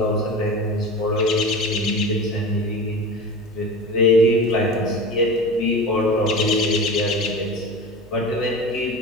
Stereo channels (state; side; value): noise; left; hum, 26 dB below the sound